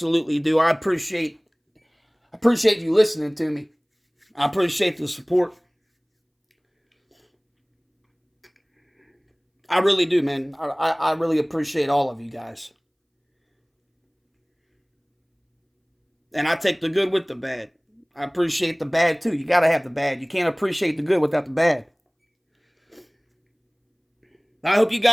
do. I appreciate you listening to me. I appreciate the support. I really do, man. I really appreciate all of you guys. And I take the good with the bad. I appreciate the bad too. You gotta have the bad. You can't appreciate the good without the bad. I hope you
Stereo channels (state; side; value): identical; both; correlation 1.00